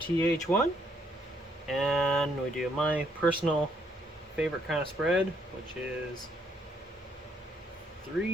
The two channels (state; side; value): normal; both; correlation 0.70